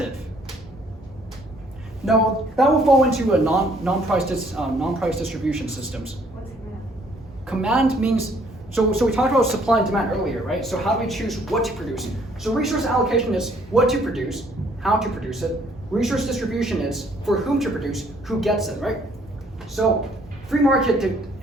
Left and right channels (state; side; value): normal; both; correlation 0.63